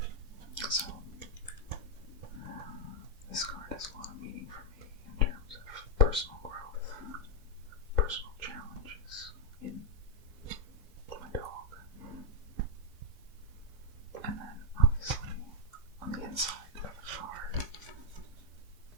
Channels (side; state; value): left; late; 4.3 ms